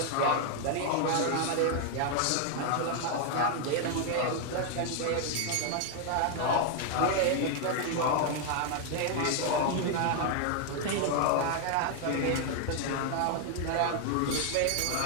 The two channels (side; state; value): both; different; correlation 0.00